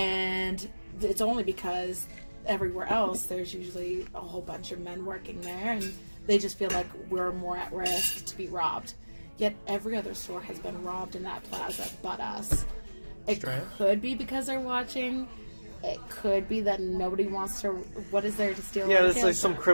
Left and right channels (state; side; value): inverted; both; correlation -1.00